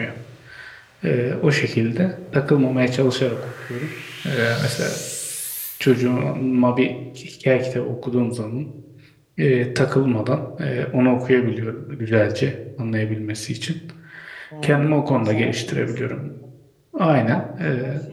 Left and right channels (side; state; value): both; identical; correlation 1.00